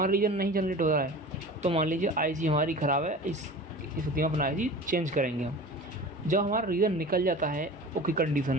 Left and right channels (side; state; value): both; normal; correlation 0.37